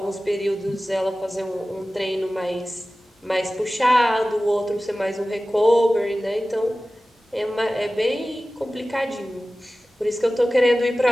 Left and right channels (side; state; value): both; normal; correlation 0.96